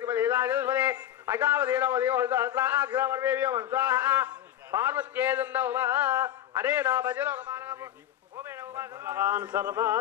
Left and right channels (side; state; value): right; quieter; 11.6 dB